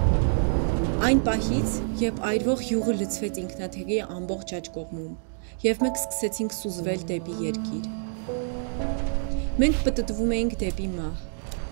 Այն պահից, երբ այրվող յուղը լցվեց ինքնաթիռի ամբողջ աջ կողմում, և մենք սկսեցինք սուզվել դեպի երկիր։ Մենք պտտվում էինք դեպի մահ։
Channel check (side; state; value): left; silent; digital silence